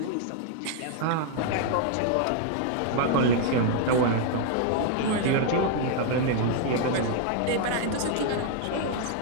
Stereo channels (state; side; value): different; both; correlation 0.00